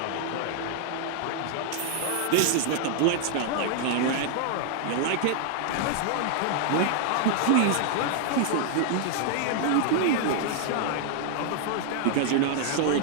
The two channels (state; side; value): different; both; correlation 0.00